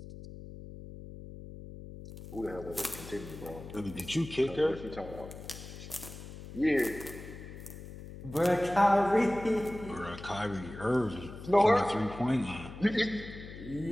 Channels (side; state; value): left; noise; hum, 13 dB below the sound